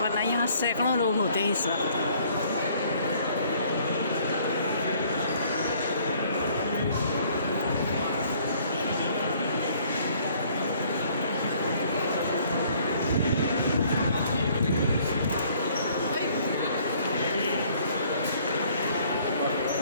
वरना यहाँ सैकड़ों लोग होते हैं इस वक्त।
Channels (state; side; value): inverted; both; correlation -0.60